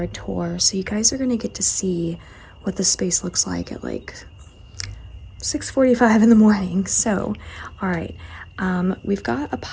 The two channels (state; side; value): identical; both; correlation 1.00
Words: tour. So you guys are gonna get to see what the space looks like at like 6:45 in the morning. So, all right, we've got a